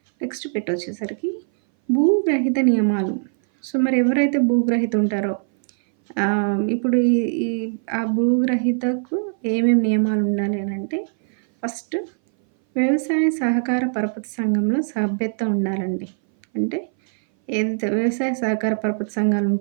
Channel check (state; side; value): silent; left; 60 dB below the other